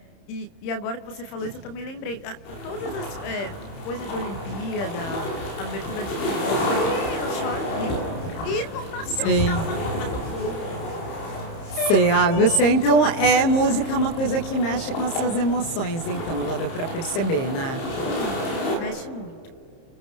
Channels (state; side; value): late; right; 30 ms